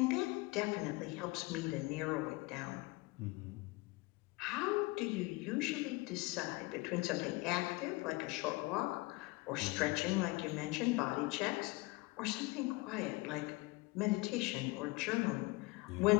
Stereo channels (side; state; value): right; quieter; 23.3 dB